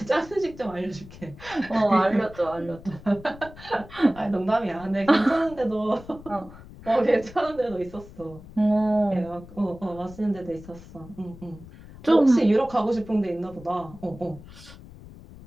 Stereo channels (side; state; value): left; noise; rumble, 18 dB below the sound